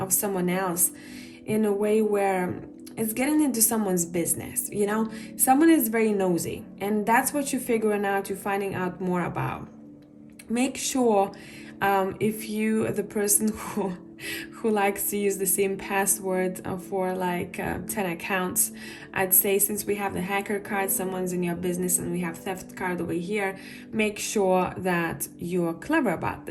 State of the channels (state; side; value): identical; both; correlation 1.00